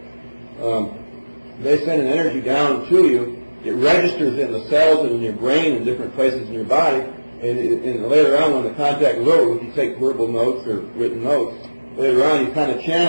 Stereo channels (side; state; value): both; inverted; correlation -1.00